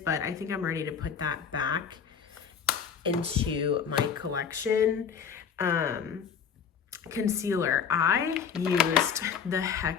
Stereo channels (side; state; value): right; quieter; 7.0 dB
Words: I think I'm ready to put that back into my collection. Concealer. I used the